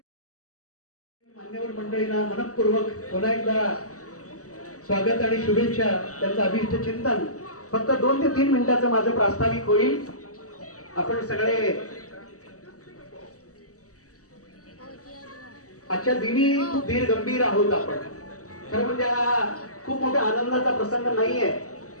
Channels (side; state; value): right; late; 0.66 ms